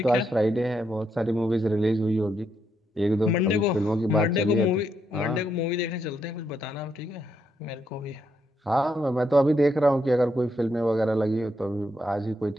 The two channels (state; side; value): normal; both; correlation 0.79